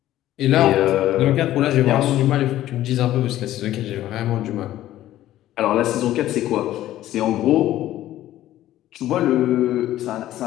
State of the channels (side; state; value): right; quieter; 13.8 dB